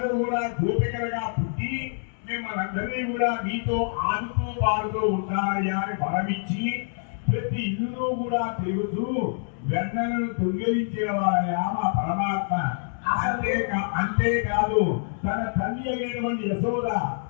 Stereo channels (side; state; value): right; silent; digital silence